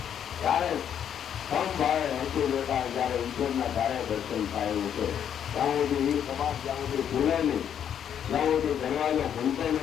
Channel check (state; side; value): quieter; right; 9.0 dB